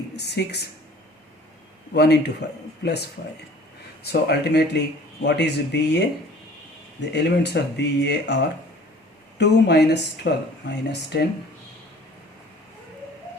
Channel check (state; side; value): normal; both; correlation 0.49